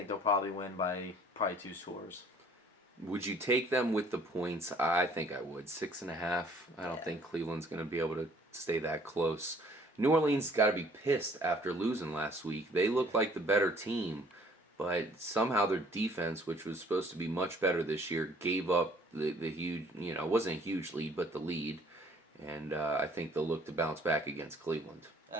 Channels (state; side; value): normal; both; correlation 0.57